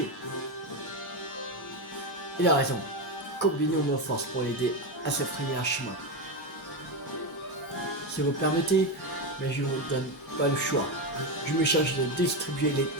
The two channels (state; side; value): normal; both; correlation 0.12